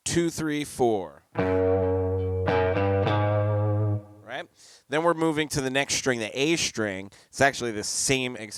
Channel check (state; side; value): identical; both; correlation 1.00